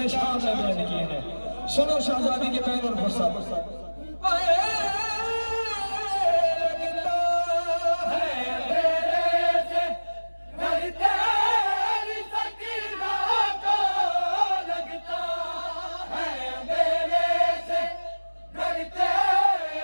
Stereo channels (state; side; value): inverted; both; correlation -1.00